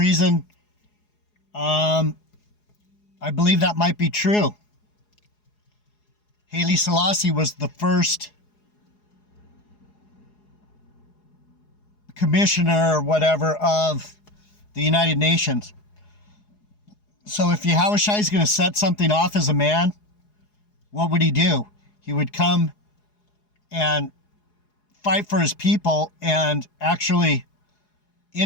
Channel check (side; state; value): right; late; 4.8 ms